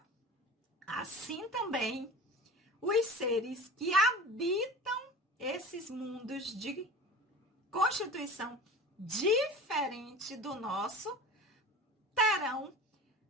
assim também os seres que habitam esses mundos de constituição diferente do nosso terão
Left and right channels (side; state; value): both; normal; correlation 0.35